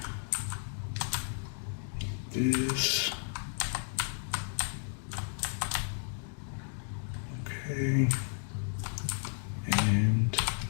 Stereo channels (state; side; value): silent; right; digital silence